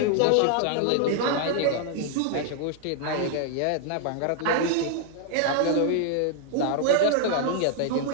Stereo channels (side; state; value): both; different; correlation 0.00